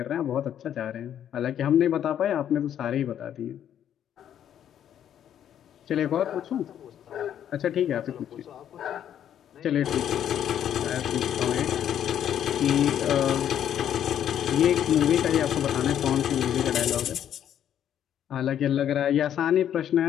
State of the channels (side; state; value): right; quieter; 10.0 dB